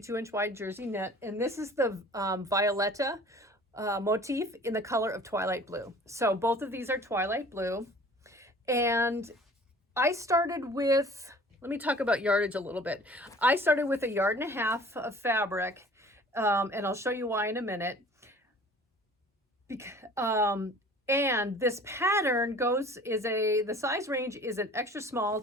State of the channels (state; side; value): normal; both; correlation 0.47